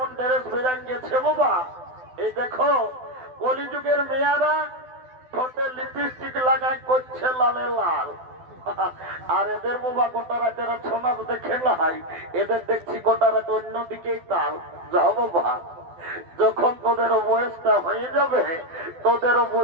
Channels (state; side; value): late; left; 12 ms